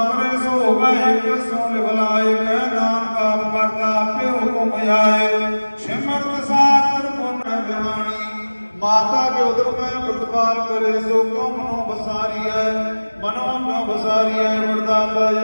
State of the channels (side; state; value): both; inverted; correlation -1.00